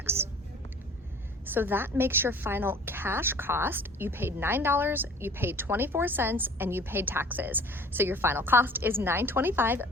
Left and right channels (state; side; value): normal; both; correlation 0.48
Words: So that makes your final cash cost. You paid $9, you paid 24 cents, and you paid taxes. So your final cost is $9.25